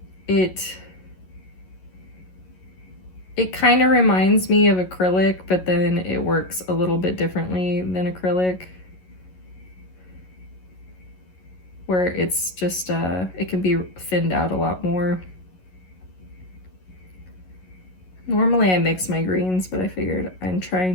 It kind of reminds me of acrylic, but then it works a little bit differently than acrylic, where it's just, it can be thinned out a lot more. Normally I mix my greens, but I figured I'm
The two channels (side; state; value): right; late; 11 ms